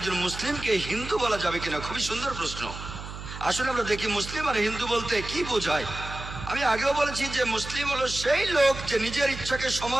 মুসলিমকে হিন্দু বলা যাবে কিনা, খুবই সুন্দর প্রশ্ন। আসলে আমরা দেখি মুসলিম আর হিন্দু বলতে কি বোঝায়। আমি আগেও বলেছি যে মুসলিম হলো সেই লোক যে নিজের ইচ্ছাকে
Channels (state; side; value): noise; right; hum, 10 dB below the sound